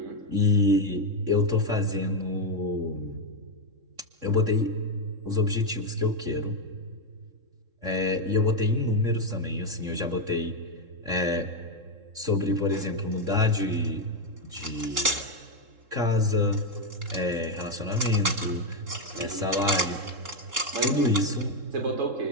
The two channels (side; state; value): left; late; 3.7 ms